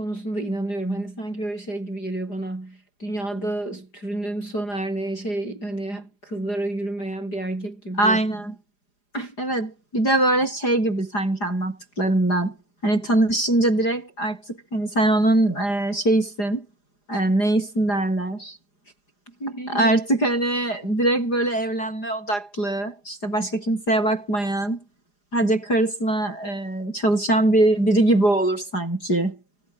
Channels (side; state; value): right; late; 4.9 ms